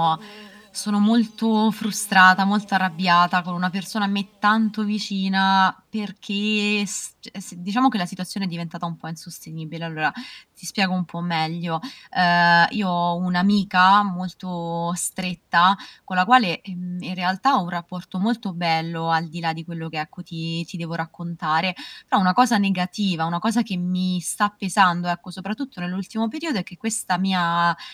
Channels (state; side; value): identical; both; correlation 1.00